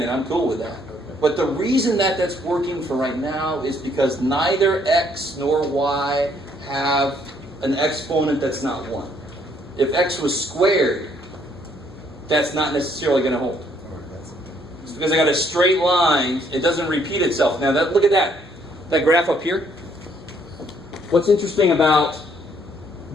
and I'm cool with that. But the reason that that's working for right now is because neither x nor y have an exponent that's not 1. If x was squared, that's not necessarily going to hold. It's because I got a straight line, it doesn't repeat itself. Now, look at that graph up here. What's interesting about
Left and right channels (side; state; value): both; normal; correlation 0.67